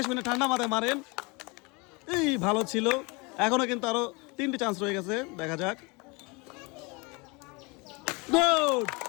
শুনে ঠান্ডা মাথায় মারেন। এই ভালো ছিল। এখনো কিন্তু আরো 3টি চান্স রয়ে গেছে, দেখা যাক। Good,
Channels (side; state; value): right; quieter; 28.0 dB